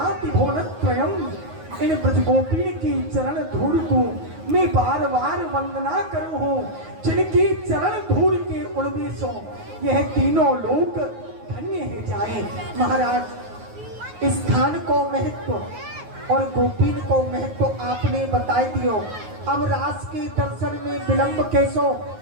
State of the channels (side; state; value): left; late; 9.4 ms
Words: भुवनत्रयम। इन ब्रजगोपीन की चरण धूल को मैं बार बार वंदना करूं हूँ, जिनकी चरण धूल के उड़वेशों यह तीनों लोक धन्य है जाए। महाराज, इस स्थान को महत्व और गोपीन को महत्व आपने बताई दियो। अब रास के दर्शन में विलंब कैसो,